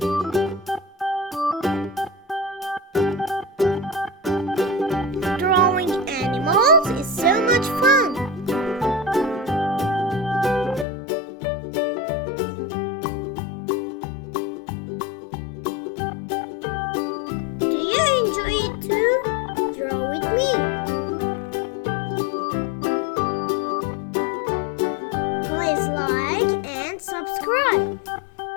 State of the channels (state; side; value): drops out; right; at 10.9 s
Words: Drawing animals is so much fun. Do you enjoy it too? Draw with me. Please like and subscribe.